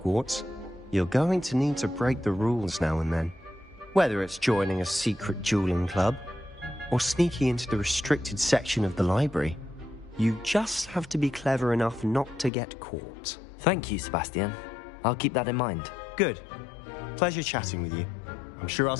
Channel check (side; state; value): right; drops out; at 12.5 s